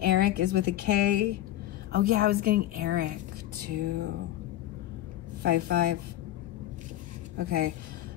Eric is with a K. Oh yeah, I was getting Eric too. 55. Okay,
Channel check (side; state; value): right; quieter; 13.7 dB